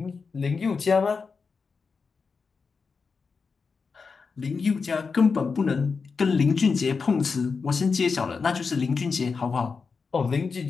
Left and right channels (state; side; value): quieter; right; 5.0 dB